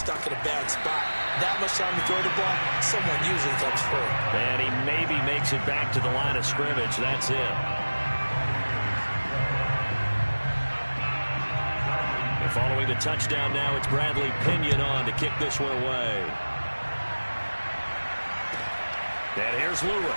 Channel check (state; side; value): inverted; both; correlation -1.00